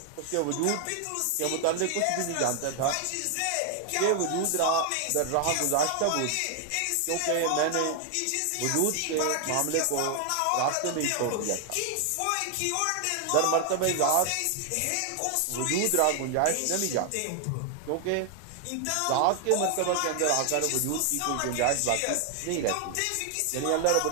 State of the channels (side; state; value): both; different; correlation 0.00